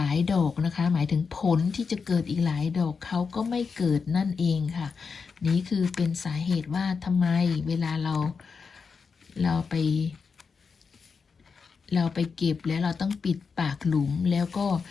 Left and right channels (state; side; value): quieter; right; 5.3 dB